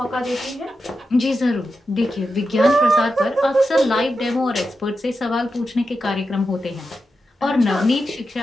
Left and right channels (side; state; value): both; normal; correlation 0.89